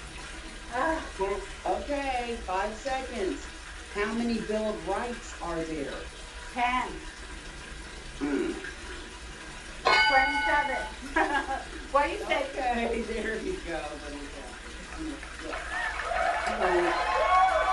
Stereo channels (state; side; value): identical; both; correlation 1.00